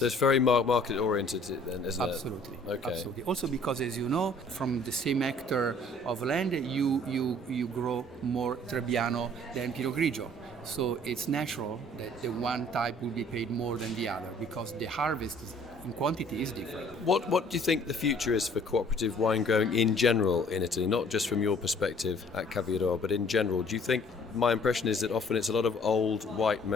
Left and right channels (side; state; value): both; normal; correlation 0.56